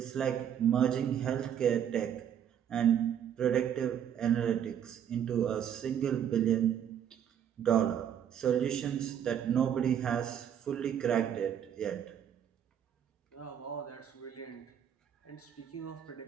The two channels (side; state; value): left; quieter; 9.2 dB